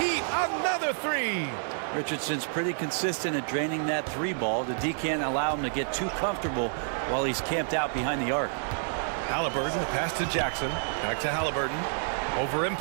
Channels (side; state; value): left; silent; digital silence